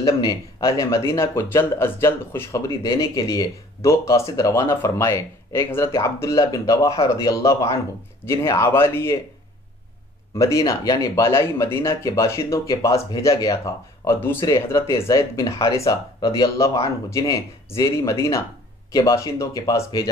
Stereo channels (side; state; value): both; normal; correlation 0.53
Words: نے اہل مدینہ کو جلد از جلد خوشخبری دینے کے لیے 2 قاصد روانہ فرمائے۔ ایک حضرت عبداللہ بن رواحہ رضی اللہ عنہ جنہیں عوالی مدینہ یعنی بالائی مدینہ کے باشندوں کے پاس بھیجا گیا تھا، اور دوسرے حضرت زید بن حارثہ رضی اللہ عنہ جنہیں زیری مدینہ کے باشندوں کے پاس